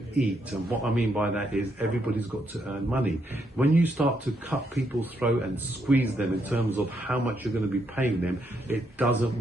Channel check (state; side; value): normal; both; correlation 0.77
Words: eat, and what I mean by that is everybody's got to earn money. When you start to cut people's throat and squeeze them in terms of how much you're going to be paying them, it doesn't